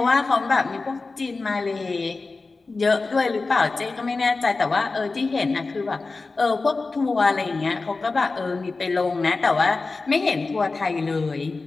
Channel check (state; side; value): quieter; right; 3.8 dB